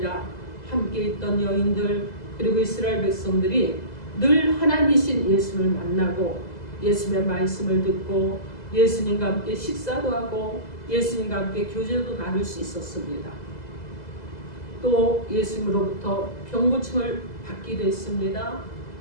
함께 있던 여인들 그리고 이스라엘 백성들이 늘 하나님이신 예수님을 만나고 예수님의 말씀을 듣고 예수님과 함께 식사도 하고 예수님과 함께 교제도 나눌 수 있었습니다. 또 예수님으로부터 병고침을 받기도 했습니다.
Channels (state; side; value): late; right; 2.0 ms